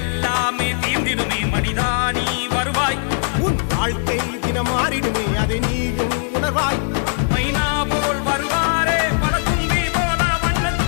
தீர்ந்திடுமே மனிதா நீ வருவாய், உன் வாழ்க்கை தினம் மாறிடுமே அதை நீயும் உணர்வாய். மைனா போல் வருவாரே பல தும்பி போல வண்ணத்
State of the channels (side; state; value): right; silent; digital silence